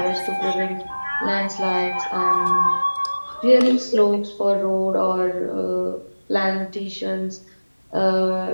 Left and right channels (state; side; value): inverted; both; correlation -1.00